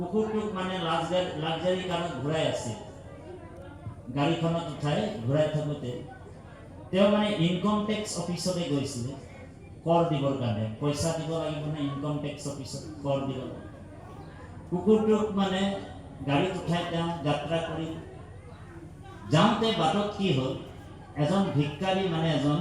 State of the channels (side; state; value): both; identical; correlation 1.00